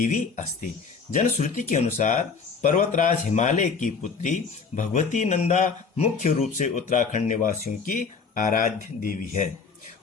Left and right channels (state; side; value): quieter; right; 5.3 dB